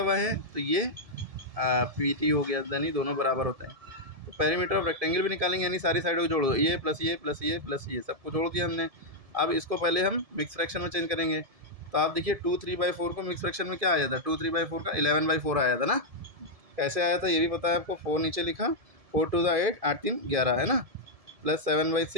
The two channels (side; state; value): left; late; 1.7 ms